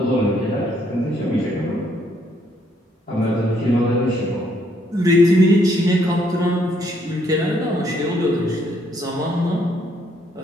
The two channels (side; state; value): both; normal; correlation 0.70